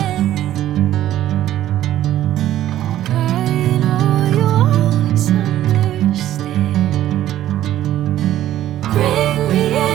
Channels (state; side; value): quieter; left; 12.8 dB